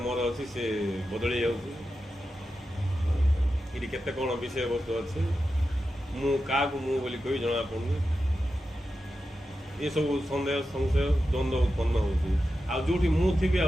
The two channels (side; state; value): both; normal; correlation 0.90